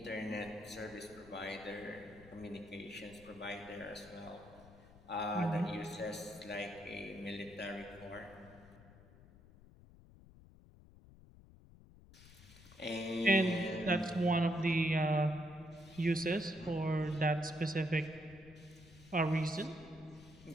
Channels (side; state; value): left; noise; rumble, 21 dB below the sound